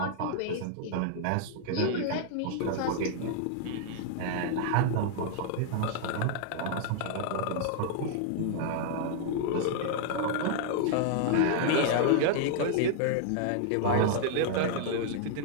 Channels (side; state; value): both; different; correlation -0.01